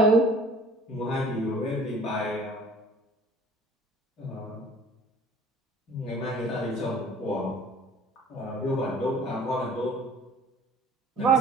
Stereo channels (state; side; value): normal; both; correlation 0.50